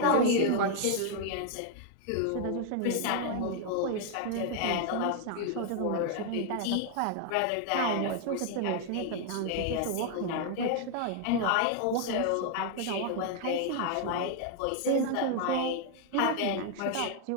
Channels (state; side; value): different; both; correlation 0.00